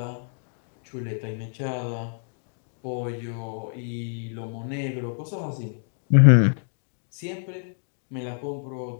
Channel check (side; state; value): right; silent; digital silence